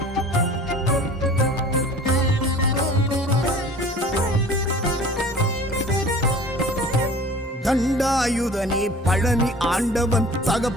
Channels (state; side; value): normal; both; correlation 0.44